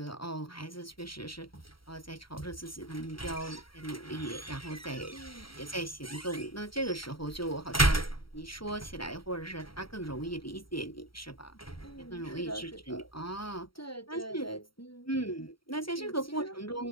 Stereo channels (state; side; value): late; right; 0.74 ms